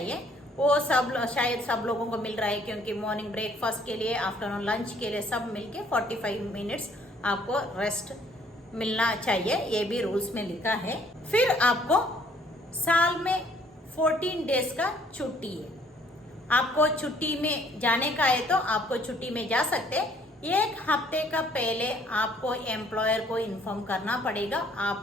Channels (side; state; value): both; normal; correlation 0.62